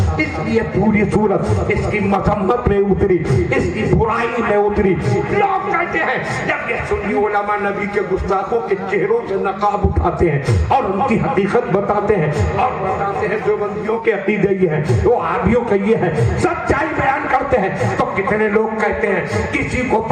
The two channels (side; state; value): both; identical; correlation 1.00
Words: اس لیے پوری صورت اس کی مذمت میں اتری، اس کی برائی میں اتری. لوگ کہتے ہیں جب یہ سنی علماء نبی کے گستاخوں کے چہروں سے نقاب اٹھاتے ہیں اور ان کی حقیقت بتاتے ہیں اور بتاتے ہیں جو بندیوں کے عقیدے یہ ہیں، وہ عابیوں کے یہ ہے، سچائی بیان کرتے ہیں، تو کتنے لوگ کہتے ہیں کسی کو